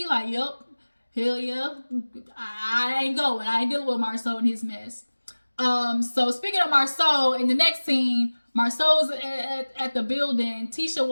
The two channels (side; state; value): both; inverted; correlation -1.00